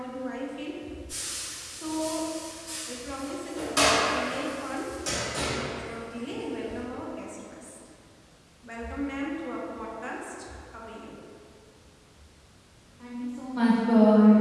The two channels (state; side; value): identical; both; correlation 1.00